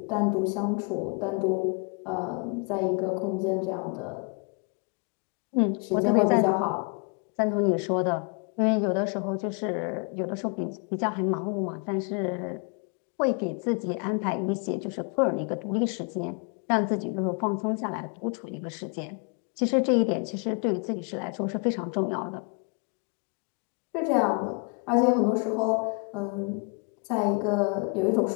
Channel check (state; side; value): quieter; right; 35.2 dB